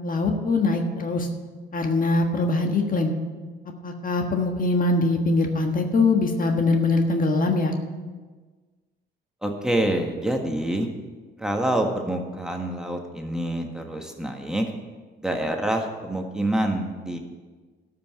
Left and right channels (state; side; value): normal; both; correlation 0.62